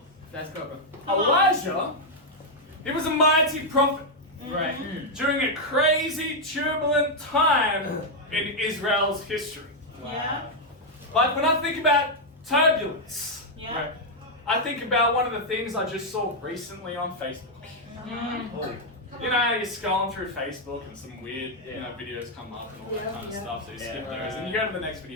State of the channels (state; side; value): normal; both; correlation -0.01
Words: Let's go, bro. Elijah, he was a mighty prophet Right. during a crazy, turbulent time in Israel's history. Yeah. Like when I think about turbulence, Yeah. right, I think about one of the things I just saw recently on Facebook. You know, you're scrolling through Facebook and some weird, videos come up and all that kind of stuff. So you skip those and you go to the next